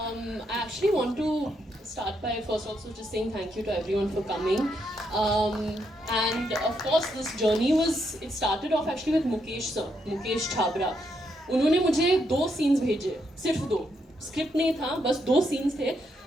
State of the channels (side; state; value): both; normal; correlation 0.78